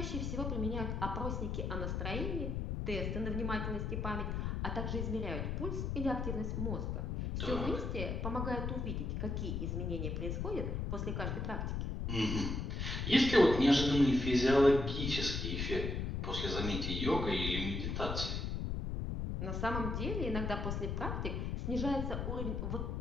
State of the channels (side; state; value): left; noise; rumble, 2 dB below the sound